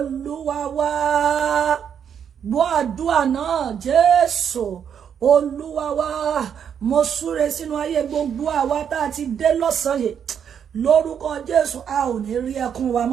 wá. Gbọ́ àdúrà náà, Jésù Olúwa wá. Mo súre sínú ayé gbogbo àwa tá a ti dé lọ́sàn-án yìí, lórúkọ Jésù, a ò ní rí ẹkún wa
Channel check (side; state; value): left; quieter; 8.1 dB